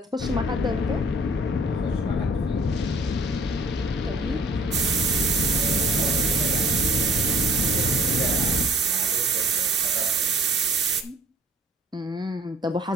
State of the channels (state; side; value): normal; both; correlation 0.53